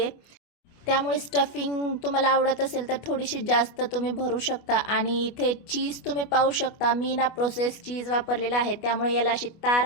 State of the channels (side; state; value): right; late; 25 ms